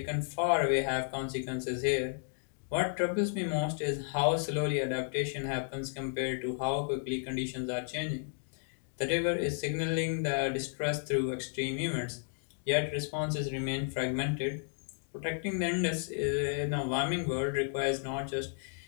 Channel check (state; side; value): silent; right; digital silence